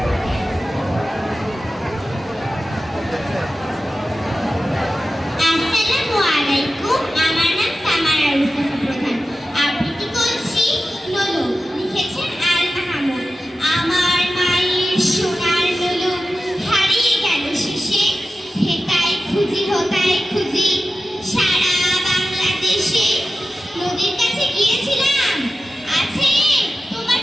আসসালামু আলাইকুম। আমার নাম সামারা রুসাফা প্রধান। আবৃত্তি করছি লোলো। লিখেছেন আল মাহমুদ। আমার মায়ের সোনার লোলো হারিয়ে গেল শেষে। হেতায় খুঁজি হোতায় খুঁজি সারা বাংলাদেশে। নদীর কাছে গিয়েছিলাম, আছে তোমার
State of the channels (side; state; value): both; normal; correlation 0.93